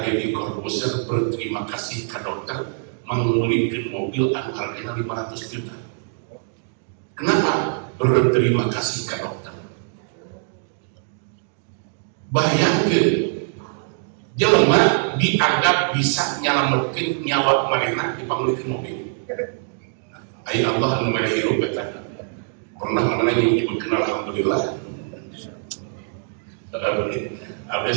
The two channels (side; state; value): left; silent; digital silence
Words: Deddy Corbuzier berterima kasih ka dokter mengulingkeun mobil anu hargana 500 juta kenapa berterima kasih ka dokter bayangkeun jelema dianggap bisa nyelametkeun nyawa manehna dipangulikeun mobil. Ai Allah anu mere hirup eta. Pernah mana yang nyebutkeun alhamdulillah. Abdi